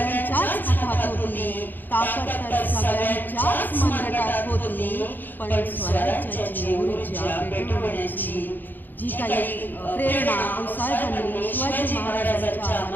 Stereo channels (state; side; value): late; right; 0.089 ms